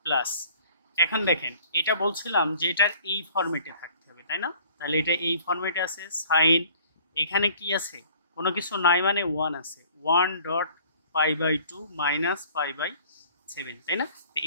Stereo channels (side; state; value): both; inverted; correlation -0.53